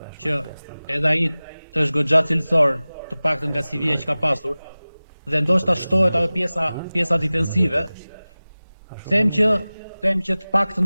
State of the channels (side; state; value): both; inverted; correlation -0.98